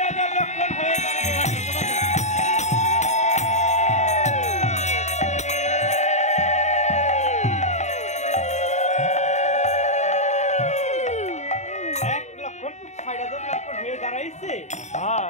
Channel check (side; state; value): right; late; 0.34 ms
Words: লক্ষণ হয়ে গেল। 1 লক্ষণ 60,000 লক্ষণ হয়ে দাঁড়াইছে।